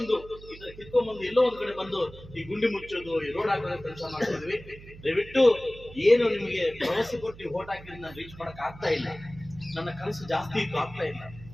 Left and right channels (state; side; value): noise; right; hum, 17 dB below the sound